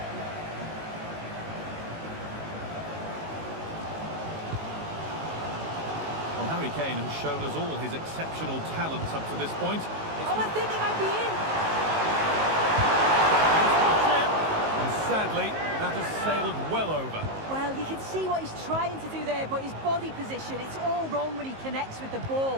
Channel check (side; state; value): left; late; 19 ms